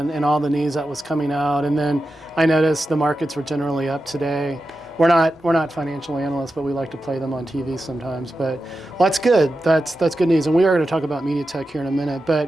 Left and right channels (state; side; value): normal; both; correlation 0.91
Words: all the news that was coming out. And then I noticed the markets were generally up today. We're not financial analysts, but we like to play them on TV sometimes. But well, that's good. That's good news. And we are going to talk about MediaTek here in a minute.